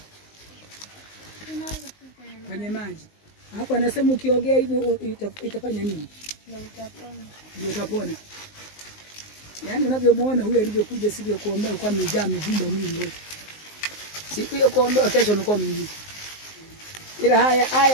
Kwenye maji. Hapo anasema ukiogea hivyo itafanya nini? Ndio utapona. Yaani unavyomuona huyu alivyokuja siku ya kuombea kwa amejaa mivimba mwili wote. Siku ya kuombea kesho unakuwa mwingi. Ila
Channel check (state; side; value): late; right; 19 ms